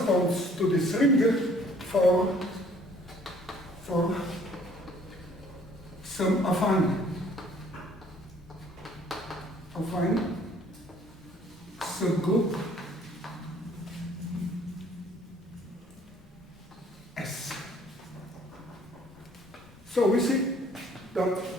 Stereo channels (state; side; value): normal; both; correlation 0.58